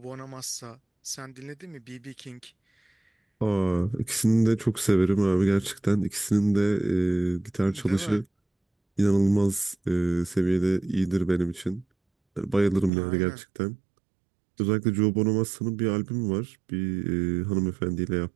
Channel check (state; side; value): drops out; left; at 12.9 s